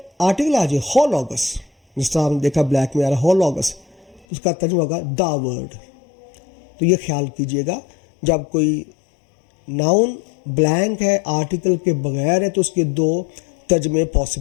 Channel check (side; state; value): right; drops out; at 4.2 s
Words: आर्टिकल आ जाए होलॉगस, जिस तरह हमने देखा ब्लैक में आ रहा होलॉगस, उसका तर्जुमा होगा द वर्ड। तो ये ख्याल कीजिएगा, जब कोई नाउन ब्लैंक है, आर्टिकल के बगैर है, तो उसके 2 तर्जमे